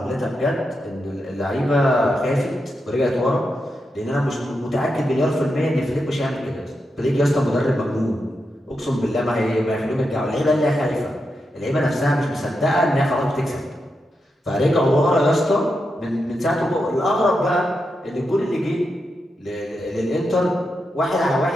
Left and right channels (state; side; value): normal; both; correlation 0.86